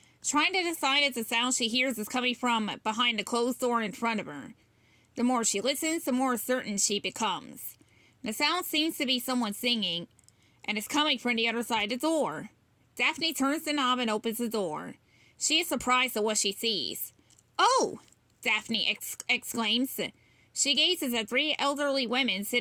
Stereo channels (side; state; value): both; identical; correlation 1.00